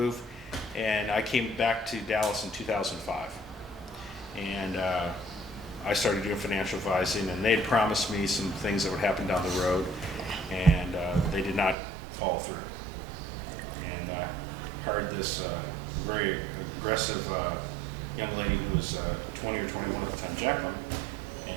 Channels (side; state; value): left; drops out; at 11.8 s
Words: and I came back to Dallas in 2005. And I started doing financial advising, and they'd promised me some things that would happen down the road, and they did not follow through. And I hired this very aggressive young lady who was 20 or 21 at the time, Jacqueline,